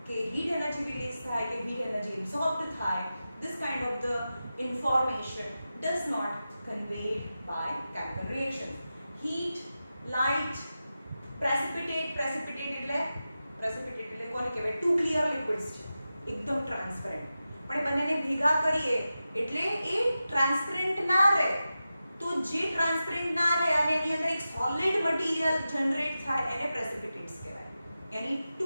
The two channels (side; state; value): both; inverted; correlation -0.93